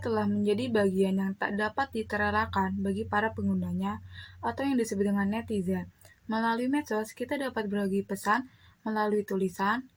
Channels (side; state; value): both; identical; correlation 1.00